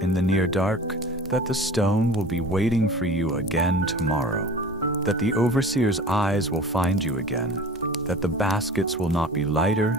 in the near dark, that the stone will be waiting for you again tomorrow, that the overseer's eyes will find you again, that the baskets will not be lighter,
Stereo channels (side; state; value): both; normal; correlation 0.40